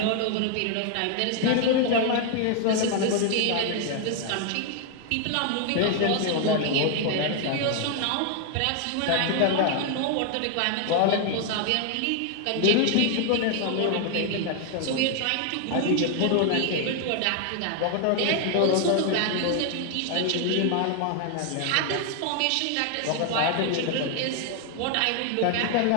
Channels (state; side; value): different; both; correlation 0.00